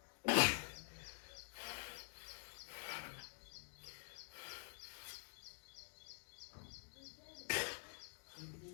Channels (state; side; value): silent; right; digital silence